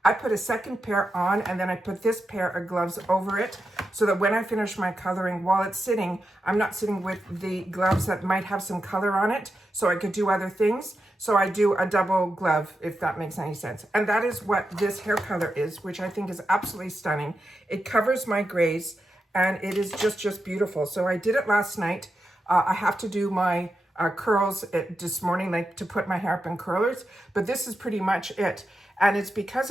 I put a second pair on, and then I put this pair of gloves over it so that when I finish my coloring, while it's sitting, I'm not sitting with the gloves that might have some color on it, so I could do other things. So I do a double glove, if that makes any sense. And that is what this hair color is, which I think is absolutely stunning. It covers my grays, and it is just beautiful. So I did it last night. I have to do my curls this morning, like to put my hair up in curlers, but this is pretty much it. And it's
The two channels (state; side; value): normal; both; correlation 0.88